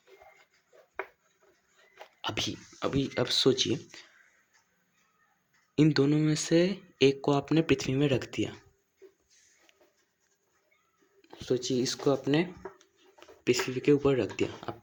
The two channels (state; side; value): identical; both; correlation 1.00